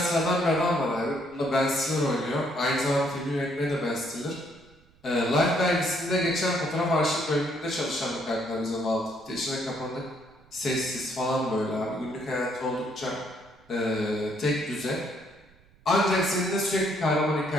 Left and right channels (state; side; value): noise; right; rumble, 29 dB below the sound